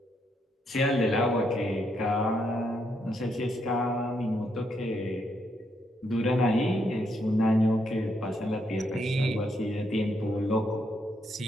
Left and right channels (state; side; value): normal; both; correlation 0.77